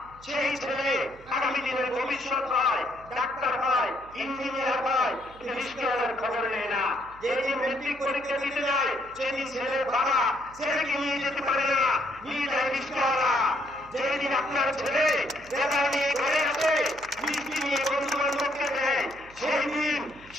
সেই ছেলে আগামী দিনের ভবিষ্যৎ হয়, ডাক্তার হয়, ইঞ্জিনিয়ার হয়, কিন্তু খ্রিস্টওয়ালার খবর নেয় না। যেদিন মেট্রিক পরীক্ষা দিতে যায় সেদিন ছেলের বাবা ছেলেকে নিয়ে যেতে পারে না, নিয়ে যায় খ্রিস্টওয়ালা। যেদিন আপনার ছেলে বেকার নিয়ে ঘরে আছে, মিষ্টি নিয়ে বন্ধু বান্ধবকে দেয়, সেই দিন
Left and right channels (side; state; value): right; noise; hum, 23 dB below the sound